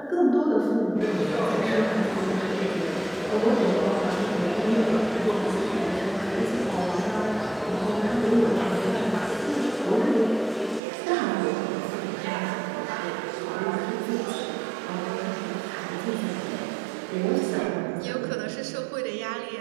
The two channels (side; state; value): left; drops out; at 10.8 s